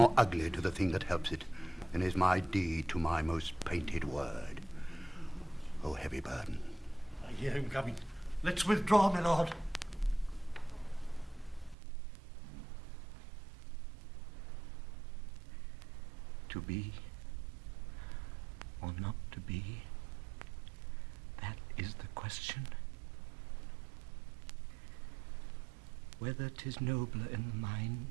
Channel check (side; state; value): left; drops out; at 11.8 s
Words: ugly to the thing that helps it than is my deed to my most painted word. Oh, heavy burden. I hear him coming. Let's withdraw, my lord. To be or not to be, that is the question. Whether 'tis nobler in the